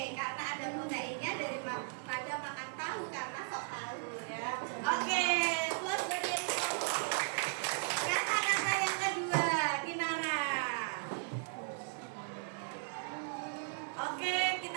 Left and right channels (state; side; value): silent; left; digital silence